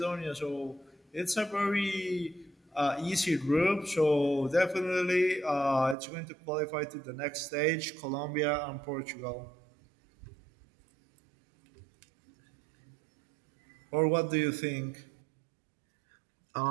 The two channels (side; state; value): left; drops out; at 6.0 s